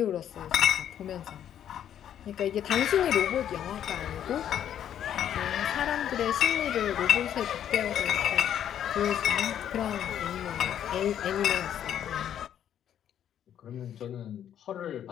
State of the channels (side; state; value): right; quieter; 10.0 dB